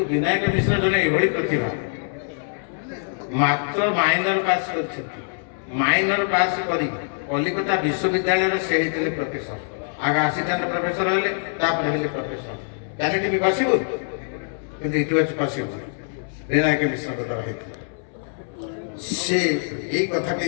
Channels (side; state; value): right; silent; 63 dB below the other